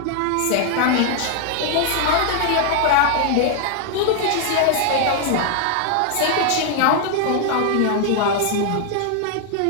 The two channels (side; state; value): both; different; correlation 0.00